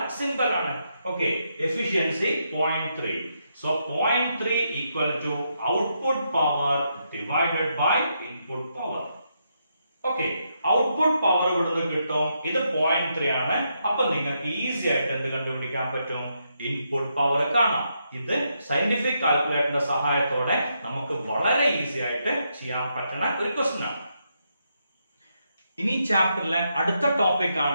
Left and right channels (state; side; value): inverted; both; correlation -0.80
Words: സിമ്പൽ ആണ്. Okay, efficiency 0.3. So 0.3 equal to output power divided by input power. Okay, output power ഇവിടുന്ന് കിട്ടും. ഇത് 0.3 ആണ്. അപ്പൊ നിങ്ങൾക്ക് ഈസി ആയിട്ട് എന്ത് കണ്ടുപിടിക്കാൻ പറ്റും? ഇൻപുട്ട് പവർ കാണാം. ഇത് സയന്റിഫിക് കാൽക്കുലേറ്ററിന്റെ സഹായത്തോടെ നമുക്ക് വളരെ ഈസി ആയിട്ട് ചെയ്യാൻ പറ്റുന്ന ഒരു ക്വസ്റ്റ്യൻ ആണ്. ഇനി ചാപ്റ്ററിലെ അടുത്ത ടോപ്പിക്